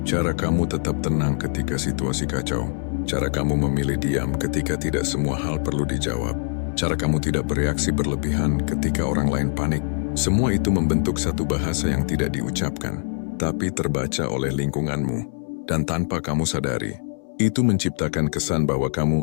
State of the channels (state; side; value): silent; right; 62 dB below the other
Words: Cara kamu tetap tenang ketika situasi kacau. Cara kamu memilih diam ketika tidak semua hal perlu dijawab. Cara kamu tidak bereaksi berlebihan ketika orang lain panik. Semua itu membentuk satu bahasa yang tidak diucapkan, tapi terbaca oleh lingkunganmu. Dan tanpa kamu sadari, itu menciptakan kesan bahwa kamu